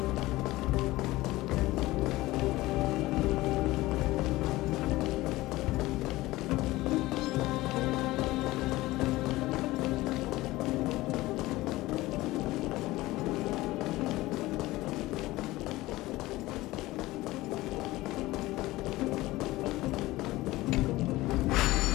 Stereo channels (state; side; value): quieter; right; 18.5 dB